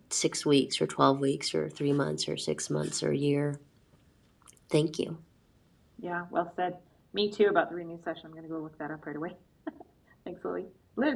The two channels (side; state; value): both; identical; correlation 1.00